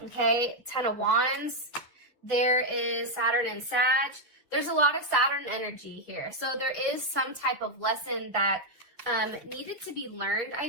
Okay, Ten of Wands. There is Saturn and Sag. There's a lot of Saturn energy here. So there is some type of lesson that needed to be learned,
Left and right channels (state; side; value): normal; both; correlation 0.01